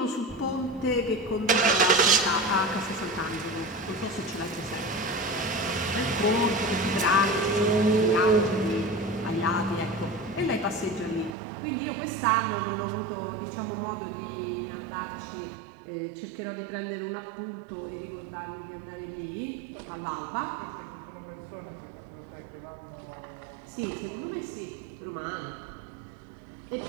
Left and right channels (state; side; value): drops out; left; at 11.4 s